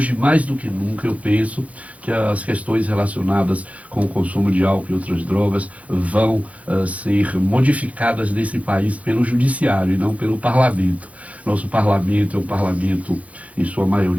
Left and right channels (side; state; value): left; late; 0.067 ms